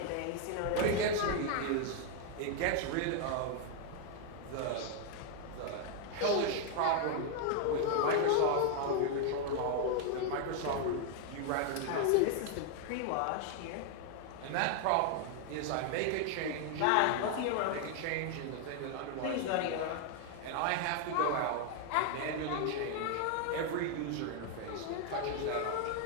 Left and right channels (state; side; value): different; both; correlation 0.00